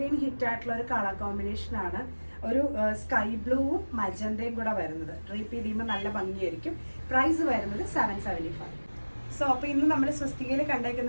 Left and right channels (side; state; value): both; inverted; correlation -1.00